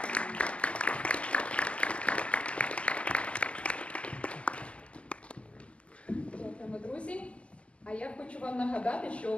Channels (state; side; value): late; right; 0.058 ms